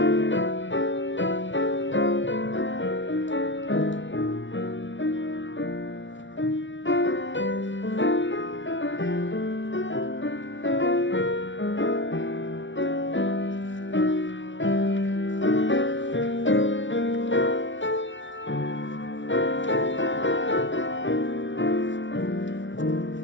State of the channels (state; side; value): late; right; 0.55 ms